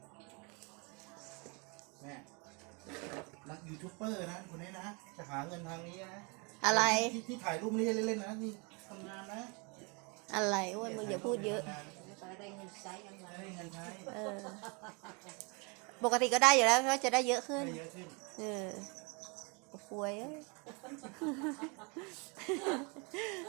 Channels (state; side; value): quieter; left; 32.1 dB